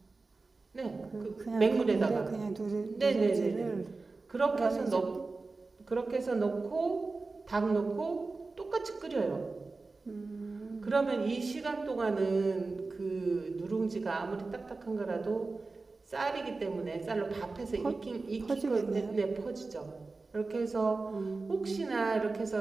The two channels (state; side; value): quieter; left; 3.7 dB